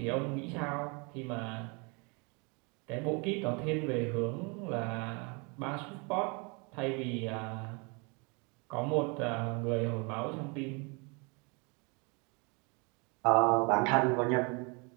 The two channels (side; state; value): left; quieter; 31.2 dB